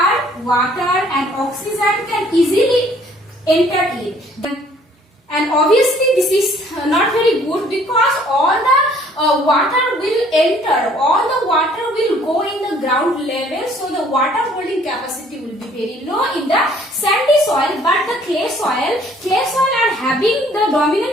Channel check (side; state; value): both; normal; correlation 0.58